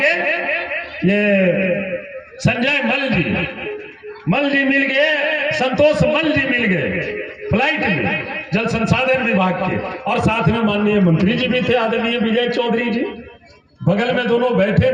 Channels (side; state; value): both; identical; correlation 1.00